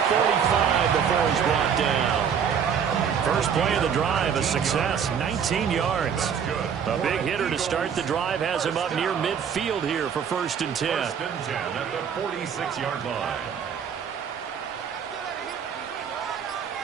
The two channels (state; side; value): quieter; left; 7.5 dB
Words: before he's brought down. First play of the drive, a success, 19 yards. A big hitter to start the drive has him up near midfield here for 1st and 10. 1st and 10 at the 46-yard line.